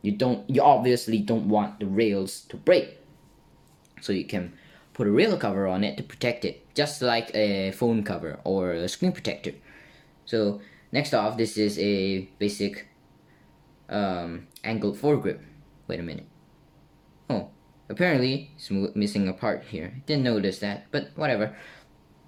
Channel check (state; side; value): identical; both; correlation 1.00